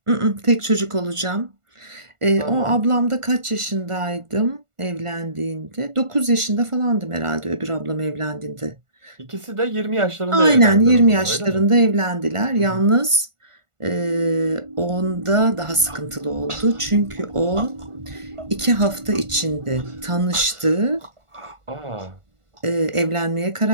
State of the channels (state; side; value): late; left; 1.4 ms